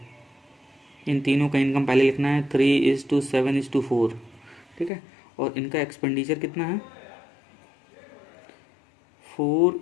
इन तीनों का इनकम पहले लिखना है 3:7:4। ठीक है, और इनका एक्सपेंडिचर कितना है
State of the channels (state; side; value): drops out; right; at 4.9 s